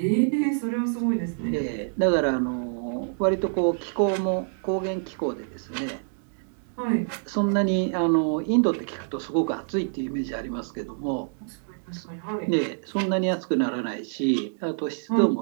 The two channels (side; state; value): left; silent; digital silence